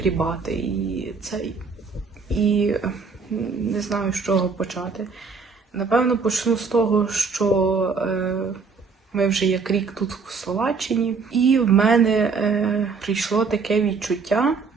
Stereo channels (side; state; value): left; quieter; 4.9 dB